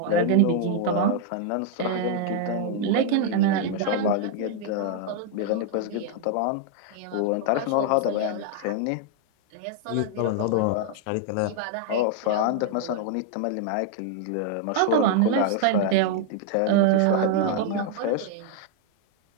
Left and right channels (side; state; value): both; different; correlation 0.00